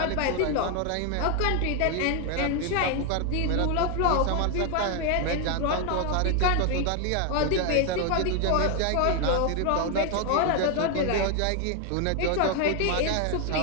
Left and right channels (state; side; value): different; both; correlation 0.01